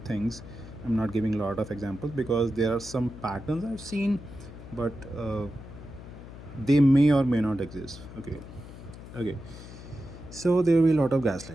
things. I'm not giving a lot of examples because there are some patterns I've seen, but they may or may not exist. Okay, so there will be a lot of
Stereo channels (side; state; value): left; noise; hum, 15 dB below the sound